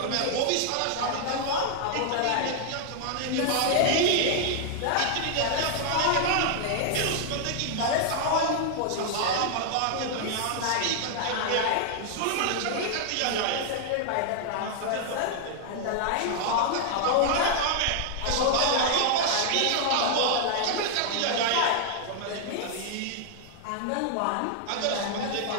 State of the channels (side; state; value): both; different; correlation 0.00